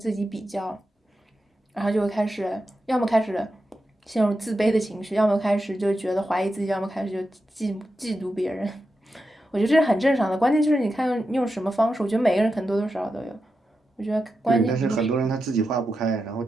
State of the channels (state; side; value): normal; both; correlation 0.89